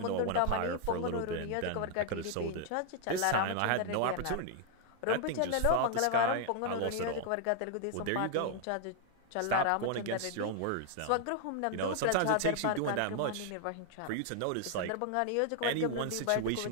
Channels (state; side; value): different; both; correlation 0.00